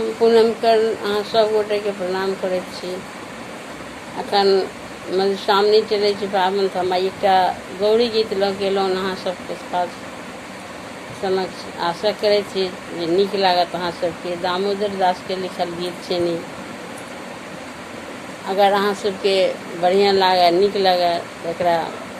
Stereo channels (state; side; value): identical; both; correlation 1.00